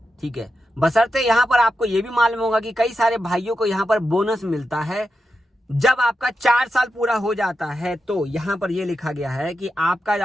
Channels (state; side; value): normal; both; correlation 0.89